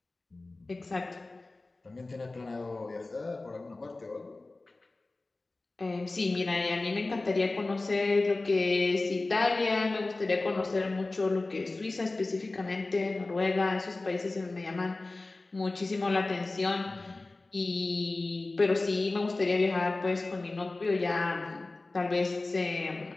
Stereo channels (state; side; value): quieter; right; 3.2 dB